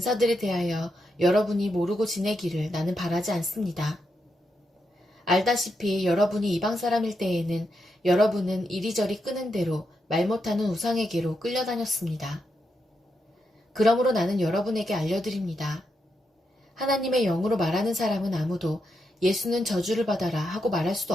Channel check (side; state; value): both; normal; correlation 0.83